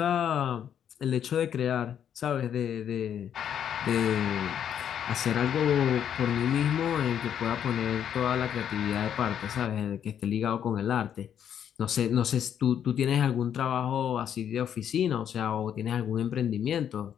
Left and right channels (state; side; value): quieter; right; 9.1 dB